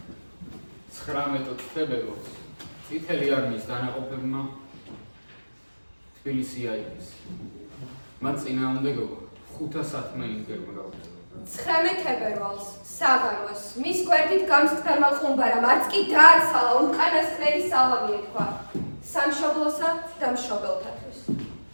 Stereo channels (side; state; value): both; inverted; correlation -1.00